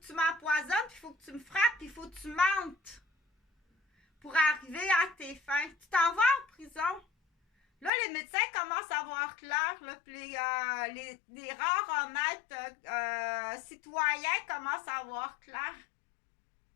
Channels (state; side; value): drops out; right; at 7.9 s